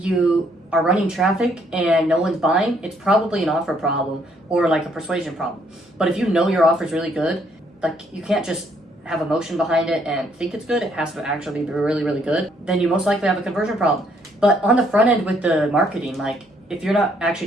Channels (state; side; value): normal; both; correlation 0.68